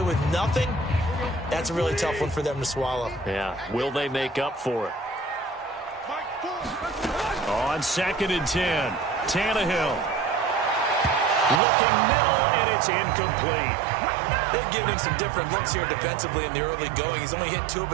with nothing, that's a really tough one for them to swallow. Yeah, will they make up for it? On 2nd and 10. Tannehill. Looking middle, and it's incomplete. They've given him some different looks here defensively in the early going. He's only hit 2 of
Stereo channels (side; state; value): left; drops out; at 11.6 s